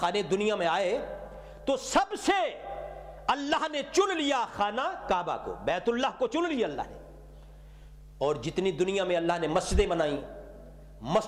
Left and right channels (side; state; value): both; identical; correlation 1.00